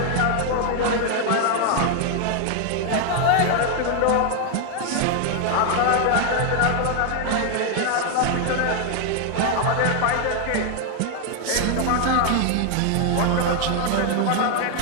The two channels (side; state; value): both; different; correlation 0.00